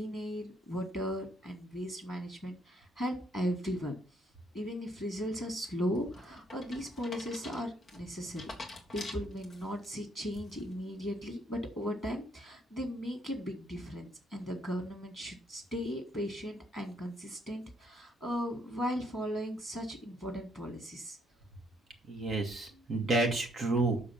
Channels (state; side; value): normal; both; correlation 0.69